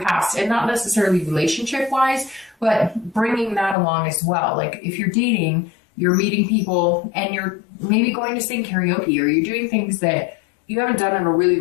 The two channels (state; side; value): drops out; right; at 3.8 s